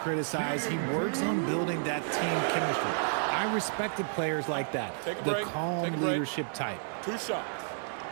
He works on building that team chemistry. I respected players like that. Take a the break. calm Take a break. leadership type. 2 shots.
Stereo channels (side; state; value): left; silent; 57 dB below the other